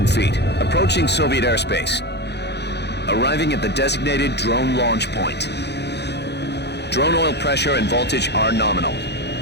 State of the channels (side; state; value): right; late; 0.49 ms